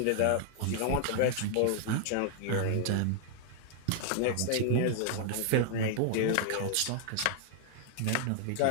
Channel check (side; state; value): both; different; correlation 0.00